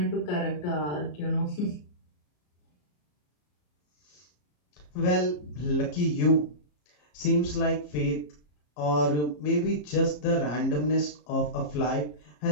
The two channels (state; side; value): late; right; 34 ms